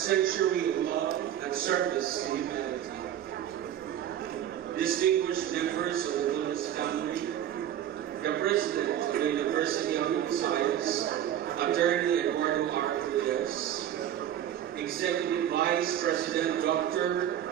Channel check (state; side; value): quieter; left; 10.9 dB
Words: of love and service to humanity. Distinguished members of the Villas family, the President of the University of the Visayas, Attorney Eduardo R. Villas, Executive Vice President